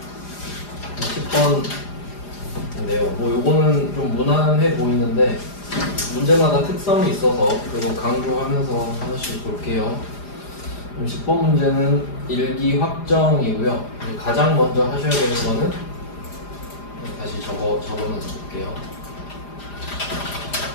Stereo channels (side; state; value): right; late; 4.9 ms